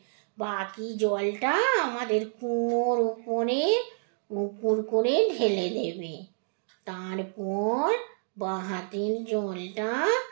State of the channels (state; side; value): silent; left; digital silence